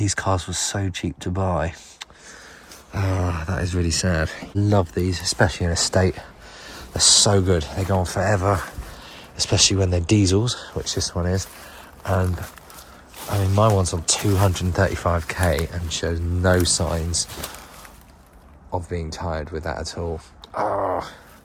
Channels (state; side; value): identical; both; correlation 1.00